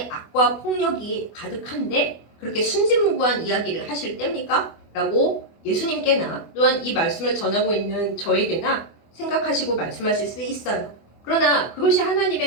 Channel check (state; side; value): late; right; 24 ms